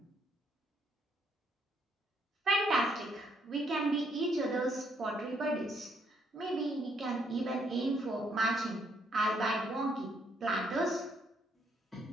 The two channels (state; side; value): normal; both; correlation 0.71